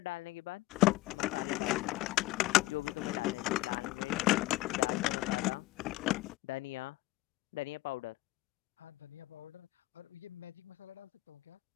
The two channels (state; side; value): quieter; right; 18.7 dB